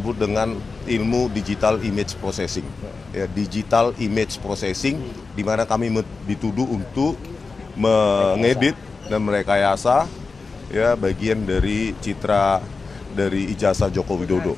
dengan ilmu digital image processing, ya, digital image processing, di mana kami dituduh untuk mengedit dan merekayasa, ya, bagian dari citra dari ijazah Joko Widodo,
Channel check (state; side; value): quieter; right; 4.3 dB